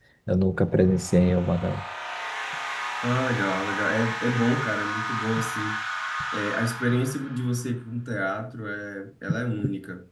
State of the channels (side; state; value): both; identical; correlation 1.00